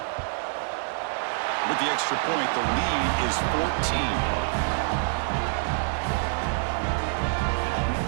With the extra point, the lead is 14.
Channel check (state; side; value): silent; left; 61 dB below the other